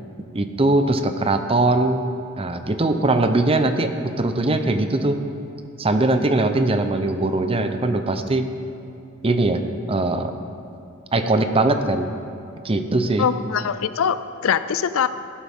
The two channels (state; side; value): normal; both; correlation 0.46